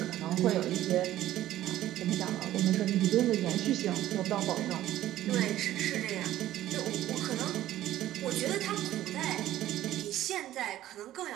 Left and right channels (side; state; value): left; quieter; 13.6 dB